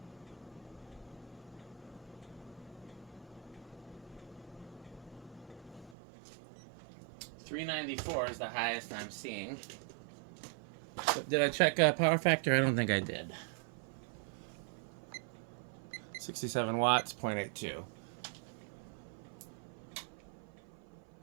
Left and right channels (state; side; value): drops out; left; at 6.0 s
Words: $394 is the highest I'm seeing. Did I check power factor? I don't think I did. 67 watts, 0.82.